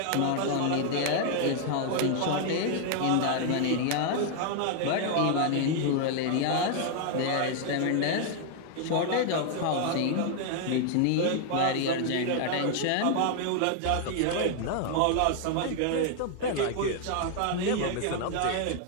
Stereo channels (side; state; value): both; different; correlation 0.00